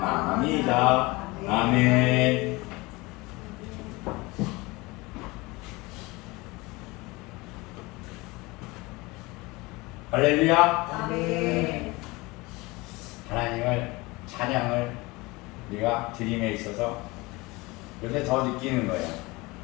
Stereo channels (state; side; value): quieter; right; 23.3 dB